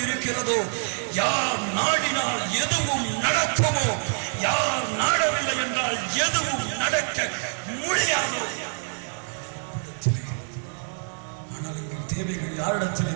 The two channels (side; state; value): left; silent; 61 dB below the other